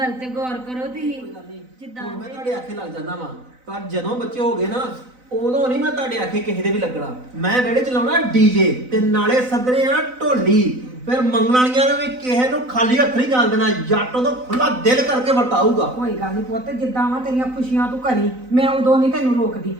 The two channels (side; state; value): left; late; 4.0 ms